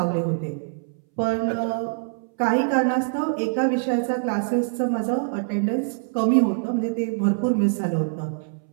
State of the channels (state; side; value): silent; left; 62 dB below the other